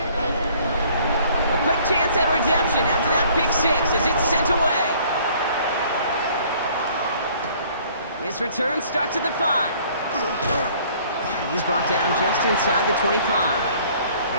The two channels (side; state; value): both; inverted; correlation -0.57